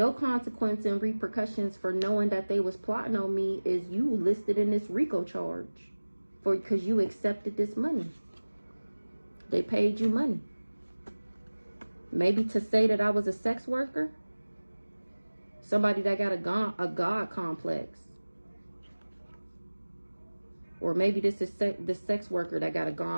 consequence and repercussions for knowing that they was plotting on me is you listed in this RICO charge. Because you accepted this money. They paid you money. Maybe to say that I was a sex worker. Somebody that got a God complex. Or maybe this is the sex worker that got a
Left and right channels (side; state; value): both; inverted; correlation -1.00